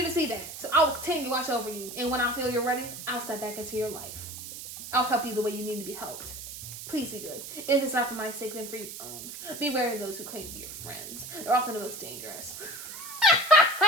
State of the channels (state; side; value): noise; right; hiss, 10 dB below the sound